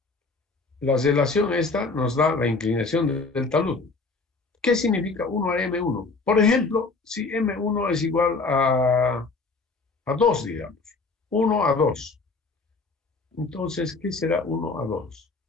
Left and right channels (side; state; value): right; quieter; 3.9 dB